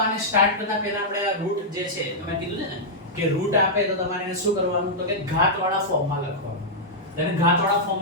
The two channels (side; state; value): both; normal; correlation -0.08